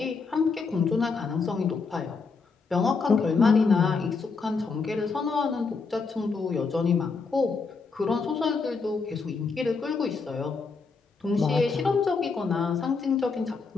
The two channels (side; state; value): right; quieter; 4.7 dB